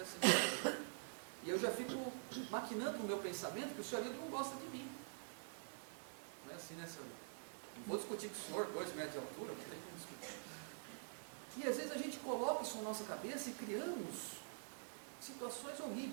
E eu já fico maquinando no meu pensamento que o senhor não gosta de mim. Não é assim, né, senhor? Não vou discutir com o senhor, 2 metros de altura, não tem como discutir. E às vezes a gente coloca isso na nossa cabeça e criamos situações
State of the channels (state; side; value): silent; left; digital silence